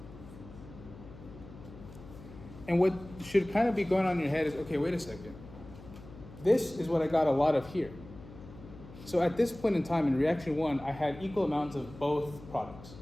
And what should kind of be going on in your head is, okay, wait a second. This is what I got a lot of here. So at this point in time in reaction 1, I had equal amounts of both products.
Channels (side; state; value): left; noise; hum, 17 dB below the sound